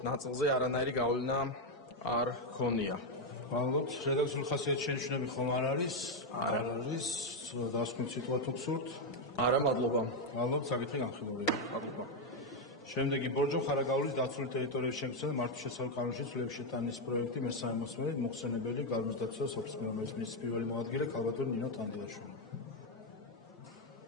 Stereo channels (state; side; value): normal; both; correlation 0.03